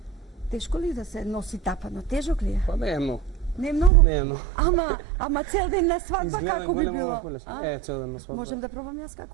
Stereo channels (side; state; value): left; drops out; at 3.9 s